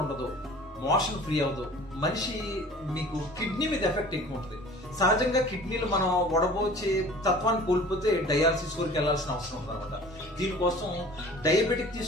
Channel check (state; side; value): normal; both; correlation 0.45